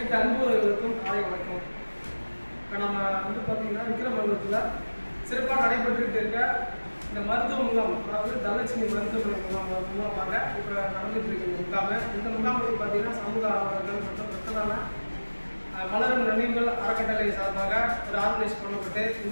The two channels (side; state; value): both; inverted; correlation -1.00